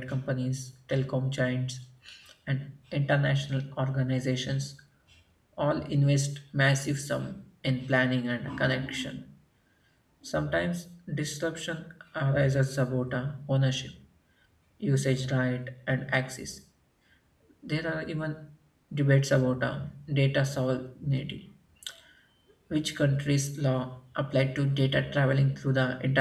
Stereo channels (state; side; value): identical; both; correlation 1.00